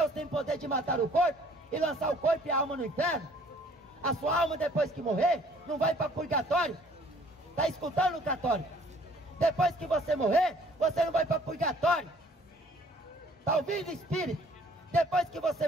tem poder de matar o corpo e lançar o corpo e a alma no inferno. A sua alma, depois que morrer, não vai para purgatório. Está escutando, católico? Depois que você morrer, você não vai para purgatório. Está ouvindo, espírito? Depois que você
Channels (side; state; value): both; normal; correlation 0.57